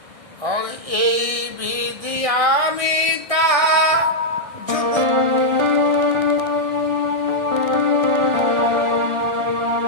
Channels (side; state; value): left; late; 1.6 ms